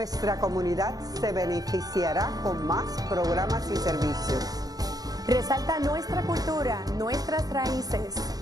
comunidad se beneficiará con más programas y servicios. Resalta nuestra cultura, nuestras raíces.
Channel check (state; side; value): late; left; 0.18 ms